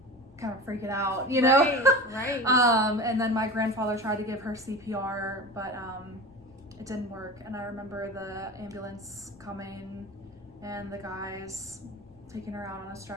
kind of freaking out, Right. And then my grandfather tried to give her CPR, but it didn't work, and I remember the ambulance coming and the guys taking her out on a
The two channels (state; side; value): noise; left; rumble, 29 dB below the sound